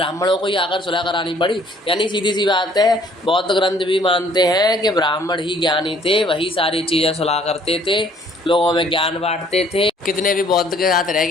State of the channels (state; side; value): normal; both; correlation 0.59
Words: को ही आकर सुलह करानी पड़ी। यानी सीधी सी बात है, बौद्ध ग्रंथ भी मानते हैं कि ब्राह्मण ही ज्ञानी थे, वही सारी चीज़ें सुलह करते थे, लोगों में ज्ञान बांटते थे। कितने भी बौद्ध के साथ रह